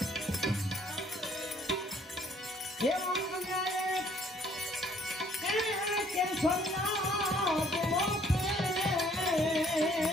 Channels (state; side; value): normal; both; correlation 0.62